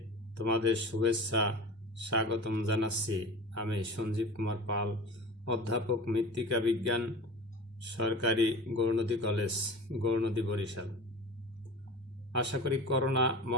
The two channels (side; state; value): both; normal; correlation 0.34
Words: তোমাদের শুভেচ্ছা স্বাগতম জানাচ্ছি। আমি সঞ্জীব কুমার পাল, অধ্যাপক মৃত্তিকা বিজ্ঞান, সরকারি গৌরনদী কলেজ, গৌরনদী, বরিশাল। আশা করি করোনা